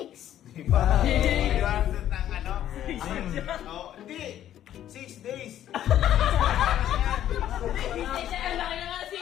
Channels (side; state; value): right; quieter; 11.5 dB